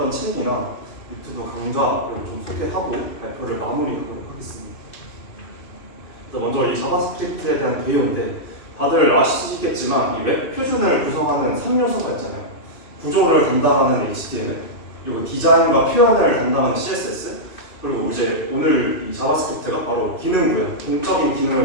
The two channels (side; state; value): right; late; 2.7 ms